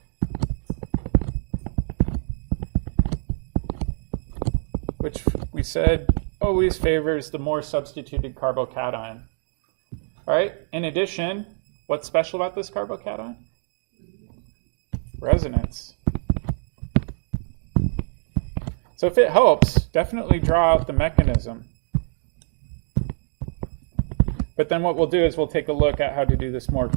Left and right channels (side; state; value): left; silent; 62 dB below the other